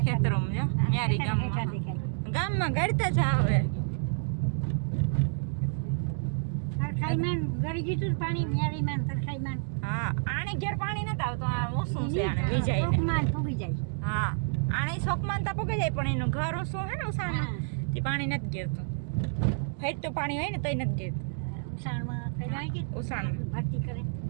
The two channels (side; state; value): left; silent; digital silence